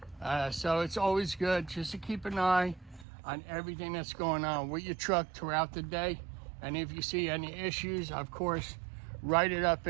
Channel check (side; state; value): left; drops out; at 3.1 s